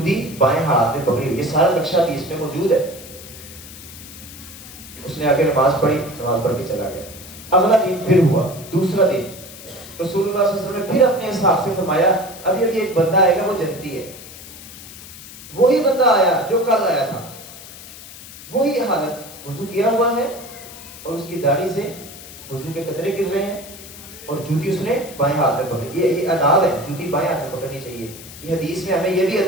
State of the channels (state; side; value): noise; left; hiss, 16 dB below the sound